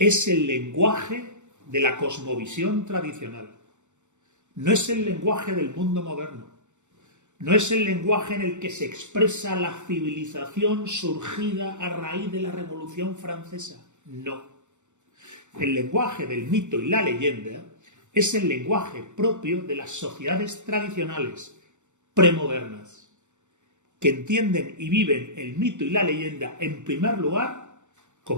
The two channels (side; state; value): left; late; 0.84 ms